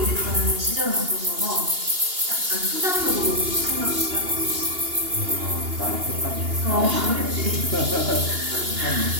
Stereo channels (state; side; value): late; left; 2.8 ms